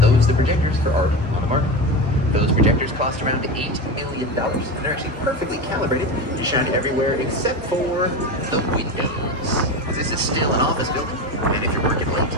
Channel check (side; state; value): both; normal; correlation 0.23